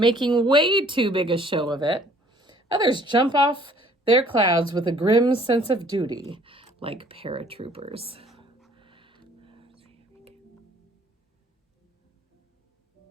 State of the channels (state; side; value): normal; both; correlation 0.57